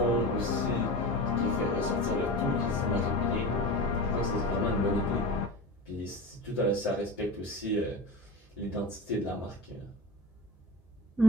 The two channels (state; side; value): normal; both; correlation 0.32